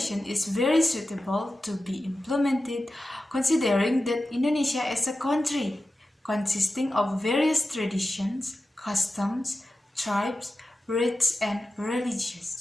is very suitable to be implemented considering that Indonesia is a country consisting of various traditions, customs, tribes, rites, and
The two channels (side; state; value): both; normal; correlation 0.93